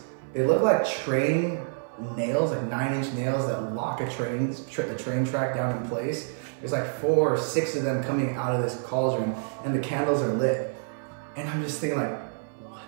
they look like train nails, like 9-inch nails that lock a train track down in place. There's like 4 or 6 of them coming out of this cauldron, and the candles are lit. And I'm just thinking like,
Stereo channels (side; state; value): left; silent; 56 dB below the other